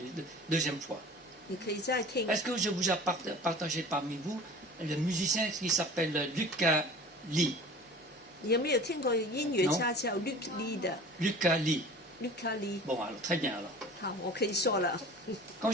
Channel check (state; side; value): normal; both; correlation 0.41